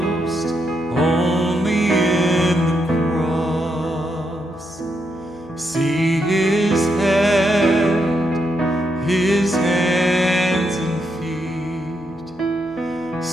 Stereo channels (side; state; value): left; noise; hum, 23 dB below the sound